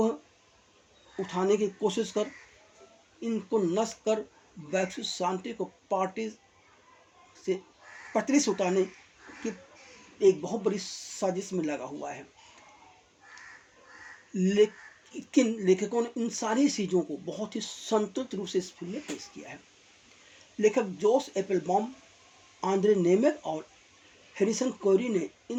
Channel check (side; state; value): both; identical; correlation 1.00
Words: उठाने की कोशिश कर इनको नष्ट कर वैश्विक शांति को पटरी से उतारने की एक बहुत बड़ी साजिश में लगा हुआ है। लेकिन लेखकों ने इन सारी चीज़ों को बहुत ही संतुलित रूप से इस फिल्म में पेश किया है। लेखक जोश एप्पलबॉम, आंद्रे नेमेक और हैरिसन कोरी ने